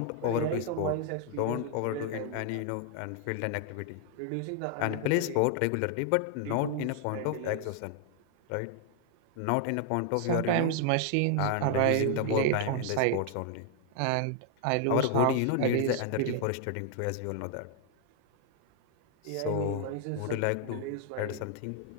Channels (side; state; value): both; different; correlation 0.00